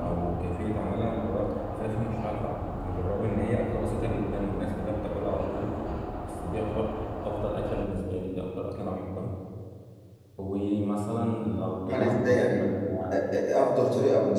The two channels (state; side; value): identical; both; correlation 1.00